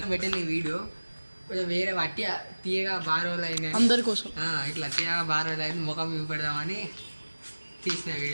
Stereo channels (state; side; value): inverted; both; correlation -1.00